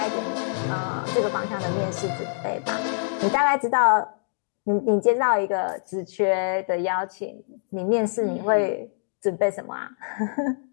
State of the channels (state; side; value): silent; right; digital silence